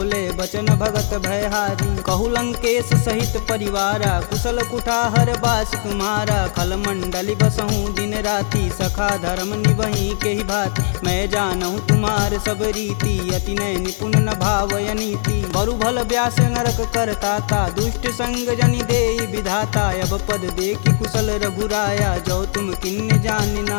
बचन भगत भयहारी। कहु लंकेश सहित परिवारा, कुशल कुठाहर बास तुम्हारा। खल मंडली बसहूँ दिन राति, सखा धर्म निबहि के ही भात। मैं जानहूँ तुम्हार सब रीति, अति नय निपुण न भावय नीति। बरु भल व्यास नरक करताता, दुष्ट संग जनि देई विधाता। अब पद देखि कुशल रघुराया, जो तुम किन्ने जान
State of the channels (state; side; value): silent; right; digital silence